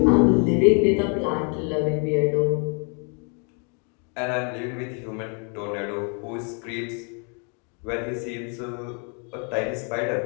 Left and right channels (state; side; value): quieter; right; 38.6 dB